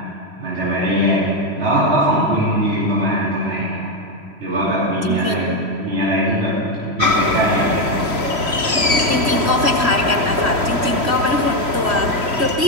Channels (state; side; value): late; left; 3.1 ms